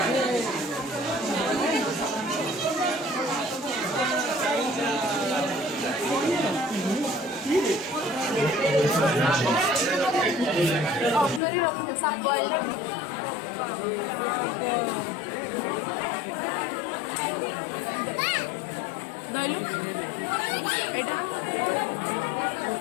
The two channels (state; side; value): drops out; right; at 11.4 s